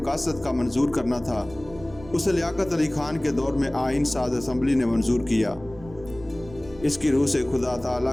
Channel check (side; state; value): right; noise; rumble, 19 dB below the sound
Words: کا منظور کرنا تھا۔ اسے لیاقت علی خان کے دور میں آئین ساز اسمبلی نے منظور کیا۔ اس کی روح سے خدا